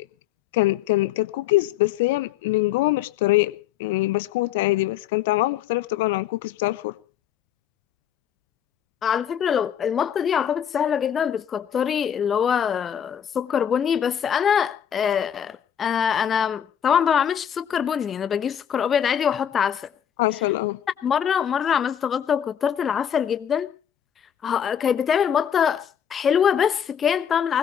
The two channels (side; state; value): right; quieter; 9.2 dB